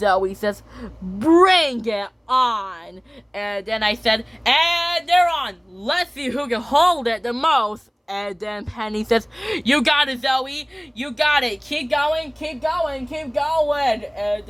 says, "Bring it on." And then I said, "And they're on. Let's see who can hold it the most." And then Penny says, "You got it, Zoe. You got it. Keep going. And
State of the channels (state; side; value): identical; both; correlation 1.00